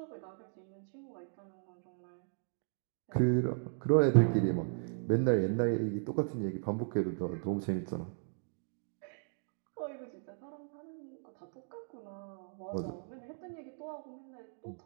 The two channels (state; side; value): silent; left; digital silence